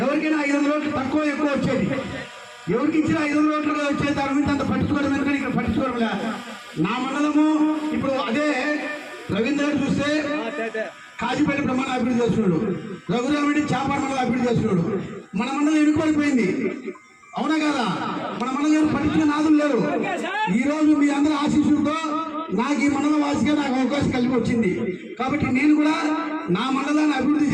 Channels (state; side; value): identical; both; correlation 1.00